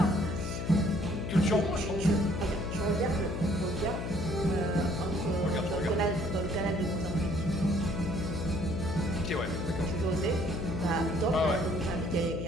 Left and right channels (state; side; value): noise; left; hum, 4 dB below the sound